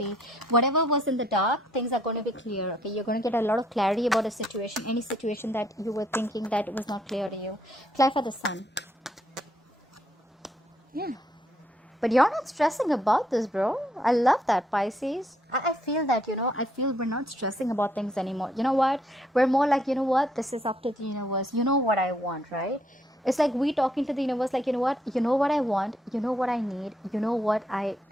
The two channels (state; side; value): normal; both; correlation 0.70